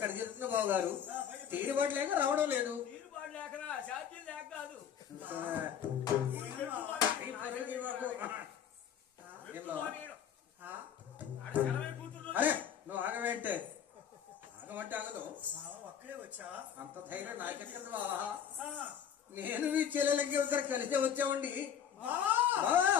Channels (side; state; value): right; quieter; 8.6 dB